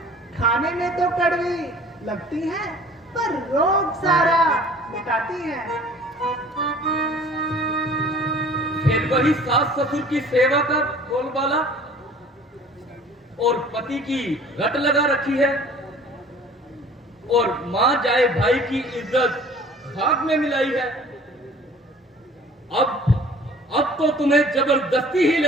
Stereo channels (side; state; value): both; normal; correlation 0.49